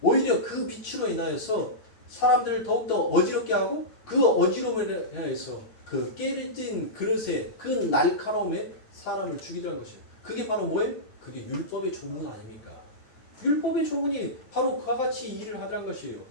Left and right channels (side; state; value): right; late; 9.1 ms